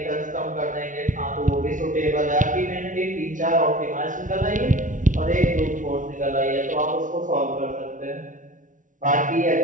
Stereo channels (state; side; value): late; left; 0.38 ms